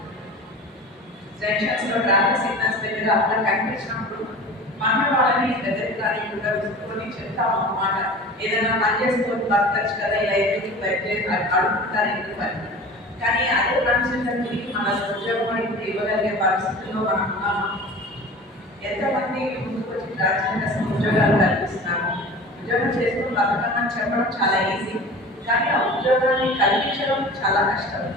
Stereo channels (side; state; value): both; normal; correlation 0.38